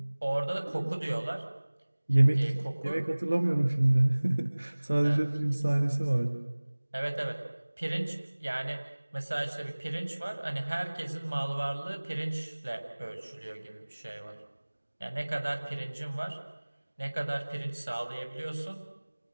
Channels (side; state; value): both; inverted; correlation -1.00